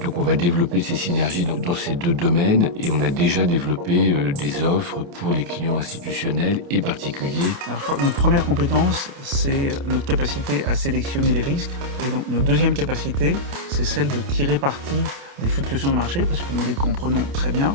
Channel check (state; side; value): late; left; 28 ms